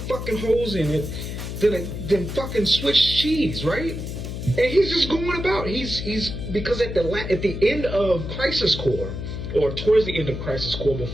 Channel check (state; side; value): noise; left; hum, 6 dB below the sound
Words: holes in it than fucking Swiss cheese, right? And he's just going about. He's because at the end of Crisis Core, or towards the end of Crisis Core,